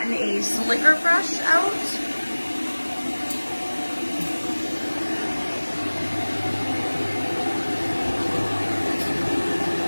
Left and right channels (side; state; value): both; inverted; correlation -1.00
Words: a slicker brush out.